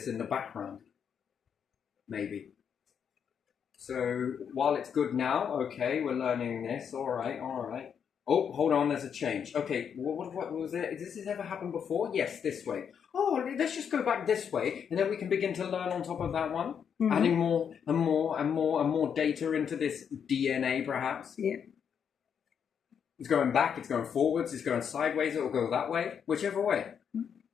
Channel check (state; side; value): quieter; right; 7.6 dB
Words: in the background. Maybe. So, while it's good now, okay, we're learning this, alright. Oh, hold on, there's a change. Okay, what was it? Does this ever happen before? Yes, this way. Oh, let's just go back this way, and then we can begin to learn on top of that one, adding more and more data into this DNA, perhaps. Yeah. It's going back, it's going forwards, it's going sideways, it'll go that way, whichever way.